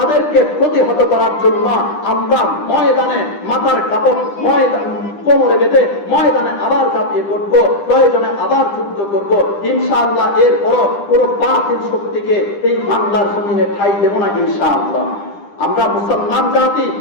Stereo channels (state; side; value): late; right; 9.9 ms